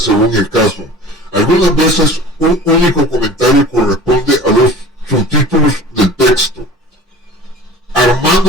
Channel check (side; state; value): both; normal; correlation 0.40